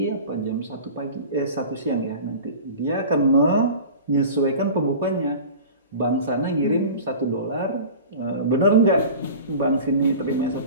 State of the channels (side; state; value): both; inverted; correlation -0.37